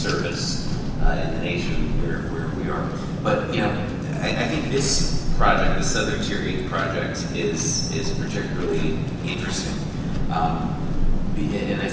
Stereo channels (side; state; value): both; identical; correlation 1.00